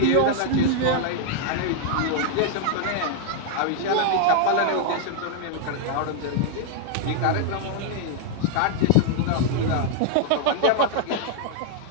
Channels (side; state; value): both; different; correlation 0.00